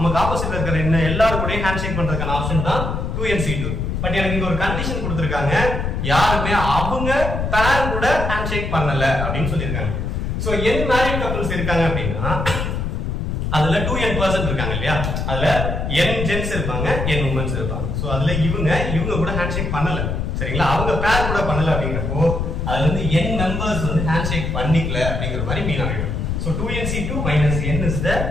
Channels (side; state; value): left; noise; rumble, 2 dB below the sound